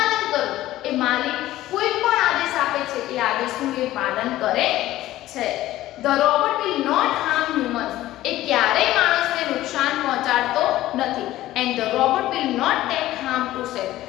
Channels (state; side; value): quieter; right; 15.2 dB